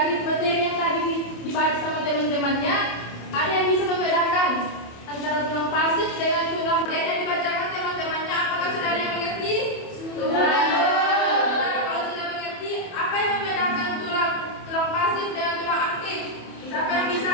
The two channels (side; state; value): right; late; 27 ms